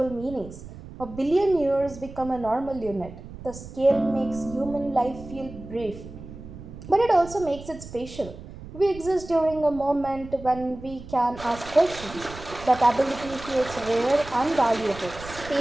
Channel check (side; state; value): right; noise; rumble, 14 dB below the sound